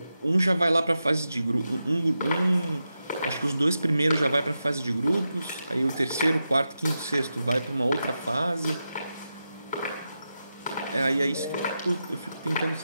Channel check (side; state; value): both; inverted; correlation -0.89